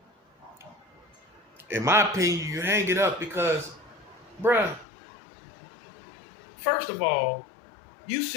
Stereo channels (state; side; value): drops out; right; at 4.9 s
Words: In my opinion, you hang it up because, bruh, first of all, you